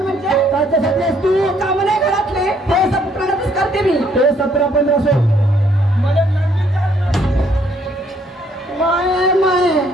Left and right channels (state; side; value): normal; both; correlation 0.66